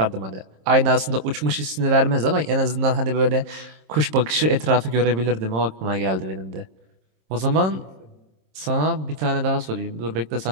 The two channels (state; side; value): late; left; 26 ms